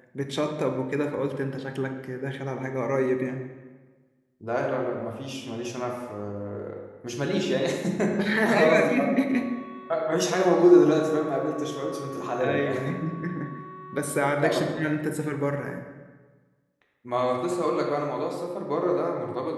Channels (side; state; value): both; identical; correlation 1.00